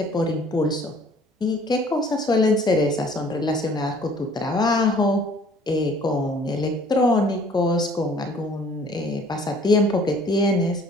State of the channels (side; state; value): both; normal; correlation 0.55